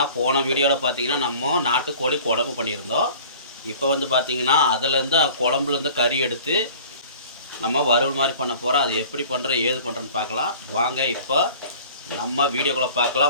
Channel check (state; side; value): inverted; both; correlation -0.46